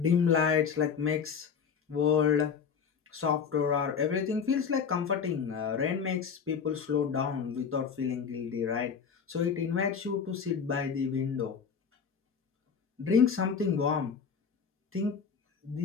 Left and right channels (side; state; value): right; quieter; 6.4 dB